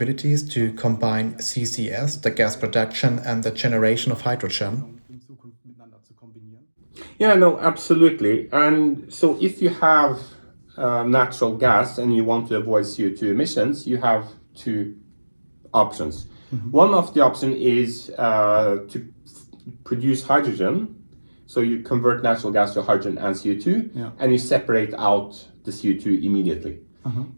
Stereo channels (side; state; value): both; inverted; correlation -1.00